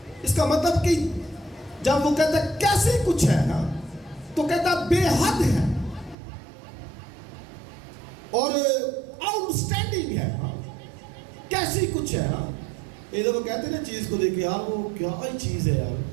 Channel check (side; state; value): left; drops out; at 6.2 s